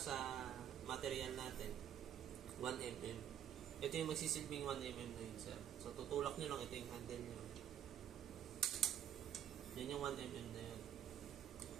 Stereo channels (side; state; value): left; quieter; 10.1 dB